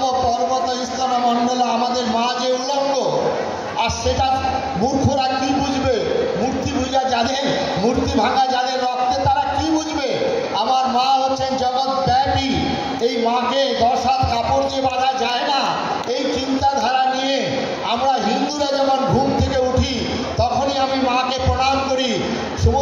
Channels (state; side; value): identical; both; correlation 1.00